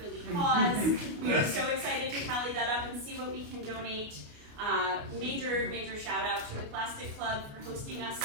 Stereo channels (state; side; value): late; left; 29 ms